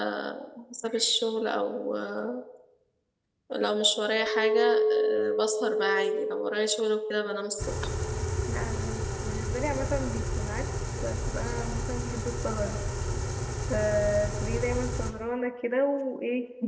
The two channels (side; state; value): both; identical; correlation 1.00